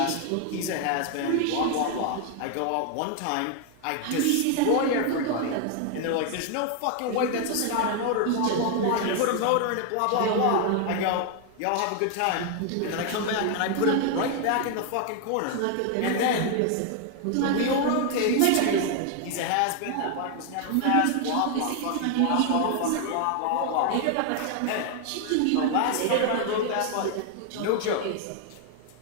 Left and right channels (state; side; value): different; both; correlation 0.00